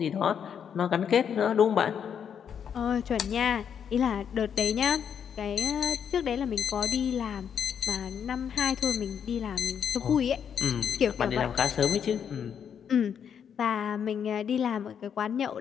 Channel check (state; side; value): quieter; right; 7.9 dB